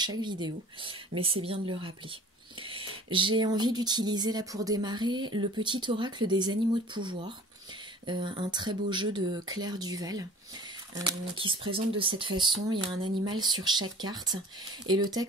vidéo, mais c'est bien de le rappeler. J'ai envie d'utiliser là pour démarrer le petit oracle des animaux de pouvoir, un très beau jeu de Claire Duval, qui se présente de cette façon. Il y a un animal sur chaque carte et le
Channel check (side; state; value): both; normal; correlation 0.46